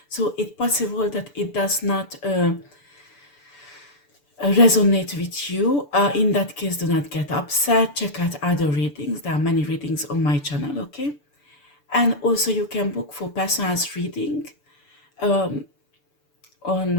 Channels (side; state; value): right; late; 6.9 ms